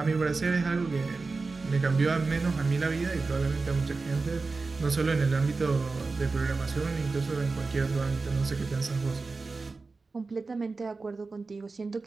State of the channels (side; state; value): left; quieter; 4.0 dB